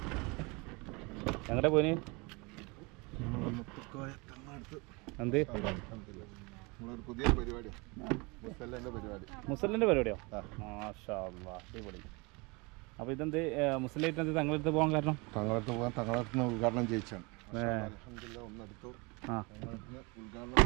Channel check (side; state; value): left; quieter; 27.5 dB